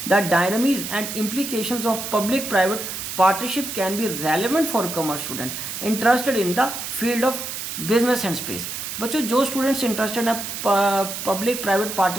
The dynamics and implications of public-private partnership can be relevant for commerce student interested in the field of business and space। बच्चों, जो students interested हैं public private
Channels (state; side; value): noise; right; hiss, 6 dB below the sound